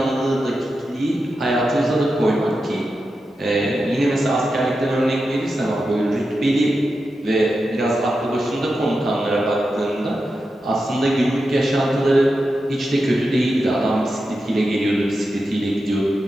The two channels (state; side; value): normal; both; correlation 0.90